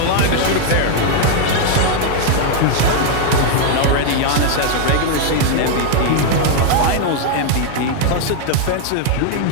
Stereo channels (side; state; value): both; different; correlation 0.00